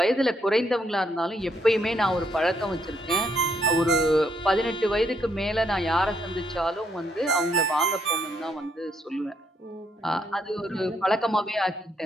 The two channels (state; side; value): normal; both; correlation 0.74